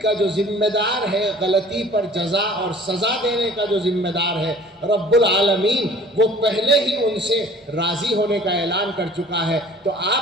کا جو ذمہ دار ہے، غلطی پر جزا اور سزا دینے کا جو ذمہ دار ہے رب العالمین، وہ پہلے ہی ان سے راضی ہونے کا اعلان کر چکا ہے، تو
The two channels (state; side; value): normal; both; correlation 0.49